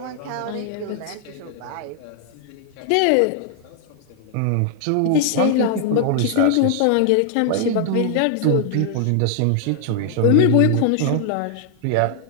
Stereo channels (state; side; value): different; both; correlation 0.00